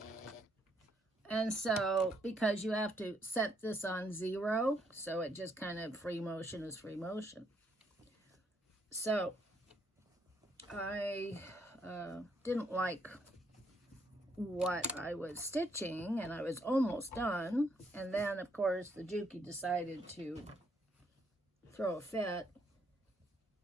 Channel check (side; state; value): both; normal; correlation 0.73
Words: And so, because you have to set this on 0, so it just kind of free motion is free motion. So, I didn't like what I was stitching, and I was almost done. And then, of course, the Juki decided to throw a fit.